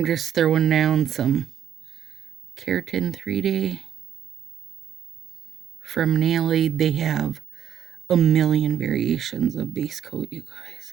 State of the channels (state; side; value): quieter; left; 9.6 dB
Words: just throwing down some Keratin 3-Day from Nail Aid. They have a million variations of base coat, you